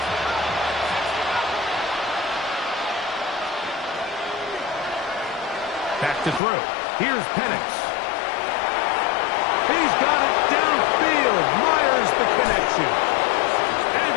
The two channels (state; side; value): drops out; right; at 6.4 s